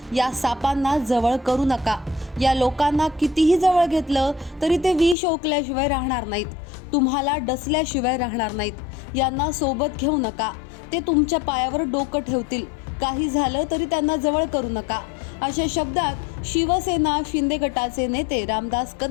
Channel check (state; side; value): drops out; right; at 5.2 s